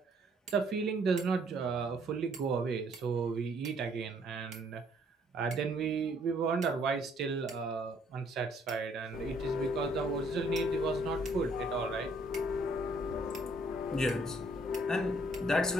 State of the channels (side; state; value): both; normal; correlation 0.65